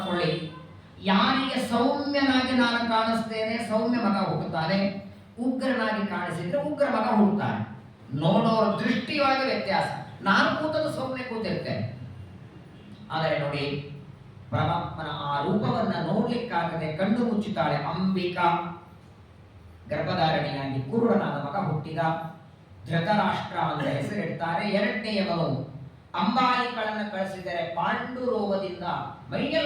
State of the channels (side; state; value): both; identical; correlation 1.00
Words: ಯಾರಿಗೆ ಸೌಮ್ಯನಾಗಿ ನಾನು ಕಾಣಿಸ್ತೇನೆ ಸೌಮ್ಯ ಮಗ ಹುಟ್ಟುತ್ತಾನೆ, ಉಗ್ರನಾಗಿ ಕಾಣಿಸಿದ್ರೆ ಉಗ್ರ ಮಗ ಹುಟ್ಟುತ್ತಾನೆ. ನೋಡೋರ ದೃಷ್ಟಿಯೊಳಗೆ ವ್ಯತ್ಯಾಸ. ನಾನು ಕೂತದ್ದು ಸೌಮ್ಯ ಕೂತಿರ್ತೇನೆ. ಆದರೆ ನೋಡಿ, ಪರಮಾತ್ಮನ ಆ ರೂಪವನ್ನ ನೋಡ್ಲಿಕ್ಕಾಗದೆ ಕಣ್ಣು ಮುಚ್ಚುತ್ತಾಳೆ ಅಂಬಿಕಾ. ಗರ್ಭಧಾರಣೆಯಾಗಿ ಕುರುಡನಾದ ಮಗ ಹುಟ್ಟಿದ. ಧೃತರಾಷ್ಟ್ರ ಅಂತ ಹೆಸರಿಡ್ತಾರೆ. ಎರಡನೆಯವನು ಅಂಬಾಲಿಕಳನ್ನ ಕಳಿಸಿದರೆ ಪಾಂಡು ರೋಗದಿಂದ